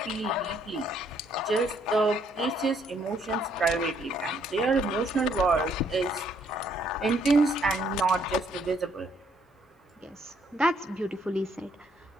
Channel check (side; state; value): both; normal; correlation 0.68